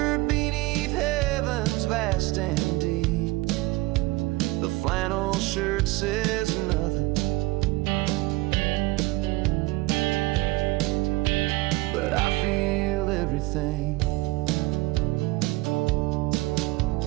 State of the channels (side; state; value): left; quieter; 20.9 dB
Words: beneath heaven's vast and deep. The flannel shirt says nothing, but I feel everything.